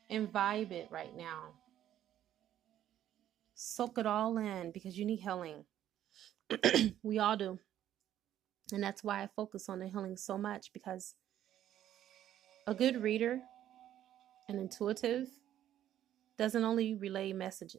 imbibe it right now. Soak it all in because you need healing. We all do. And that's why I focus on the healing so much, because a good reader, an intuitive, doesn't only relay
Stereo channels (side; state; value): left; quieter; 11.5 dB